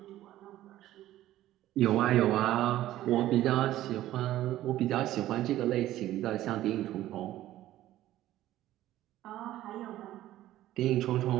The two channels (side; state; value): left; quieter; 14.1 dB